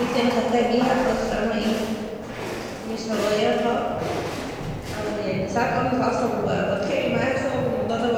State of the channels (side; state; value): both; identical; correlation 1.00